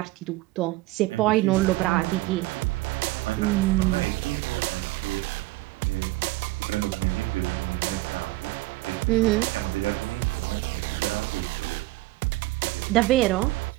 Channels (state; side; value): quieter; left; 19.4 dB